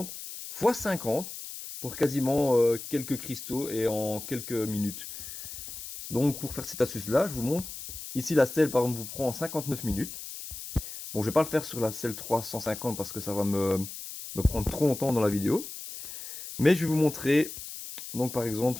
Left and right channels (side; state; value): left; noise; hiss, 10 dB below the sound